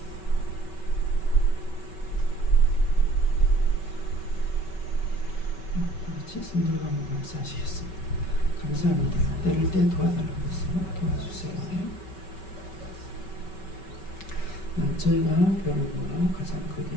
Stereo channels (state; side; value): late; right; 5.3 ms